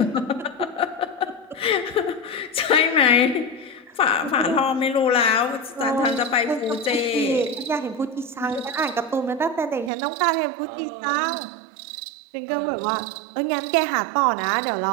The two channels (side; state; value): left; drops out; at 9.9 s